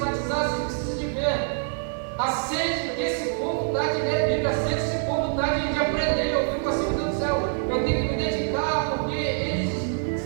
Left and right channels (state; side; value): silent; left; 61 dB below the other